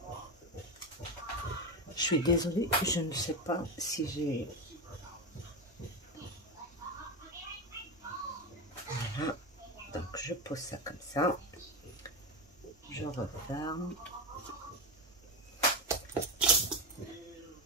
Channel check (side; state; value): both; normal; correlation 0.15